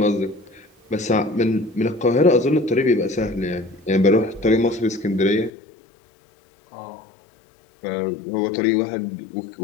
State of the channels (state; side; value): drops out; right; at 5.5 s